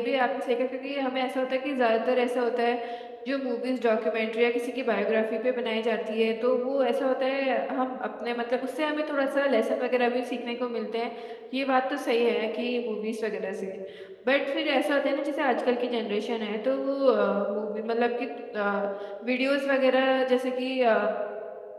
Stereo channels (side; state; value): both; identical; correlation 1.00